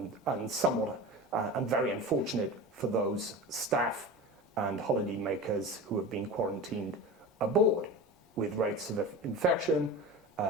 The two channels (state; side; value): normal; both; correlation 0.30